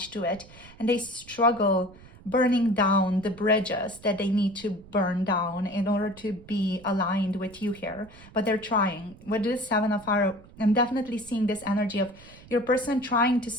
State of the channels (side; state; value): right; noise; rumble, 21 dB below the sound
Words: to it, and they struggle burning down the bridges that they need to burn down in order to be aligned with you here. But they're trying. With this Seven of Fire, I'm definitely seeing this energy of your person trying to